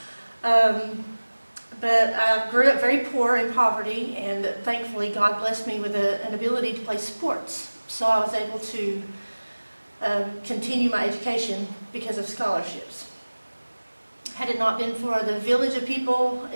No. But I grew up very poor in poverty, and thankfully God blessed me with an ability to play sports. So I was able to continue my education because of scholarships. Had it not been for the village of people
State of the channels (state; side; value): inverted; both; correlation -1.00